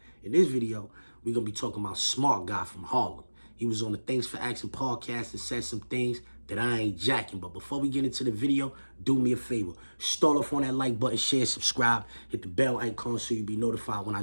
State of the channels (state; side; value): inverted; both; correlation -1.00